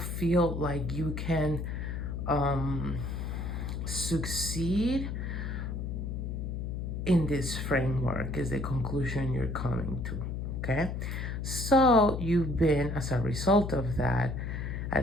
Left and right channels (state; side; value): noise; left; hum, 4 dB below the sound